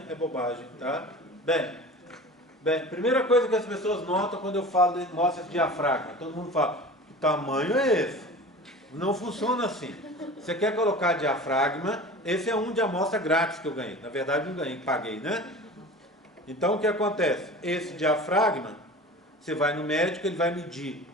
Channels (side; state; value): both; normal; correlation 0.37